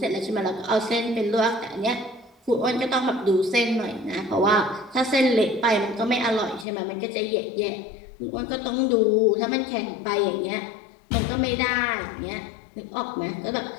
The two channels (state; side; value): drops out; right; at 6.7 s